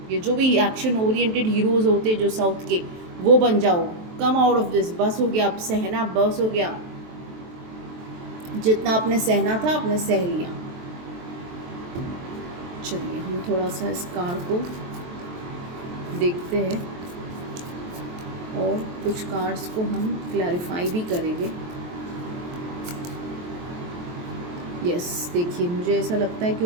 ये जो भी एक्शन ओरिएंटेड हीरोज़ होते हैं जो साउथ के, वो बन जाओ. कम आउट ऑफ दिस. बस हो गया. अब सहना बस हो गया. जितना आपने सहना था आपने सह लिया. चलिए हम थोड़ा सा इस कार्ड को देखते हैं और कुछ कार्ड्स को हम क्लैरिफाई भी करेंगे. यस, देखिए मुझे ऐसा लगता है कि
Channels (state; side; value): late; left; 23 ms